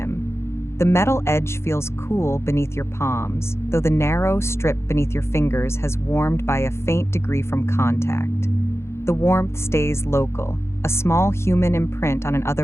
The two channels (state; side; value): late; right; 0.13 ms